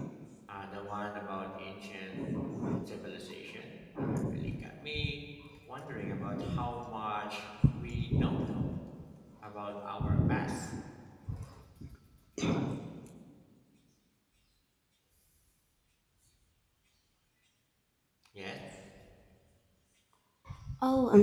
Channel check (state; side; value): identical; both; correlation 1.00